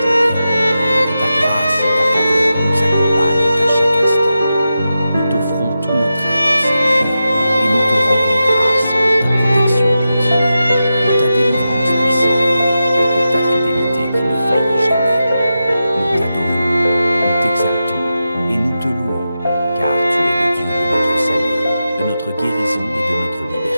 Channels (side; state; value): both; inverted; correlation -0.91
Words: de notre guérison et de notre